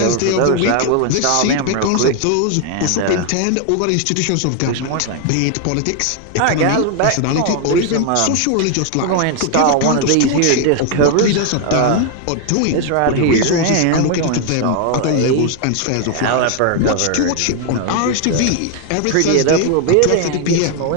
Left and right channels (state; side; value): different; both; correlation 0.01